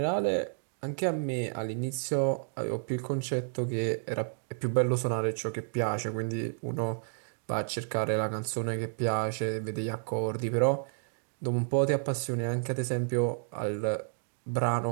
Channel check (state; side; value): silent; left; digital silence